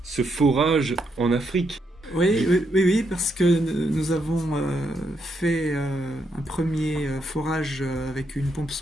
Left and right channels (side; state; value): both; normal; correlation 0.78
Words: forage en Afrique. Oui, parce que nous avons fait un premier forage avec une pompe